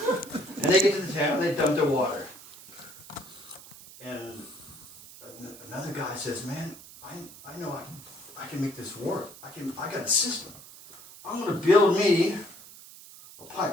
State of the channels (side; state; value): right; noise; hiss, 18 dB below the sound